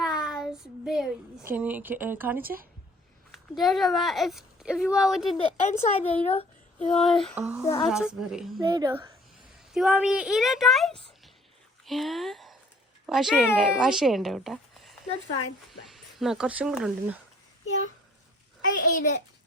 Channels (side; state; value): both; normal; correlation 0.56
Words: Can you കാണിച്ചേ? There's a if you want within the inside, there you know. You want the outside, raspberry. there you go. Do you want me to eat it, guys? Yeah. Wash ചെയ്യണ്ടേ കേട്ടാ? That's fine. എന്നാ കുറച്ചും കൂടെ ഉണ്ട്. Yeah, I ate it.